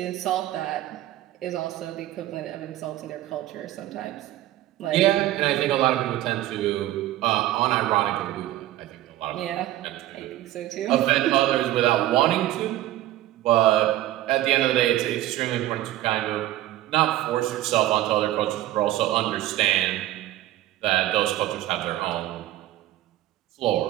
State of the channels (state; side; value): quieter; left; 14.8 dB